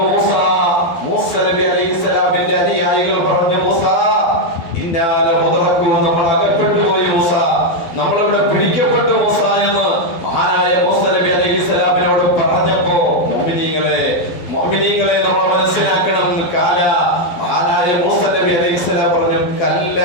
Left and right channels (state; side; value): late; right; 12 ms